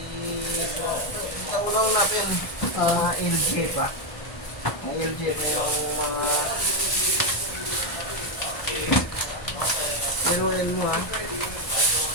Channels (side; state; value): right; late; 1.0 ms